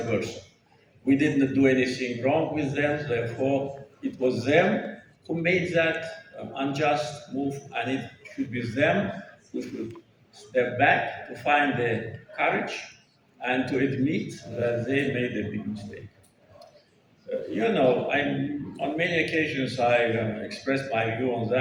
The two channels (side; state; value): both; identical; correlation 1.00